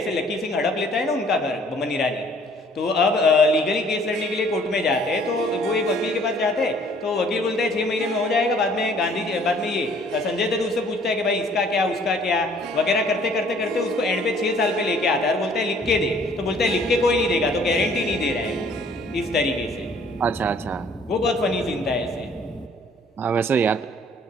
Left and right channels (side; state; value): both; normal; correlation 0.58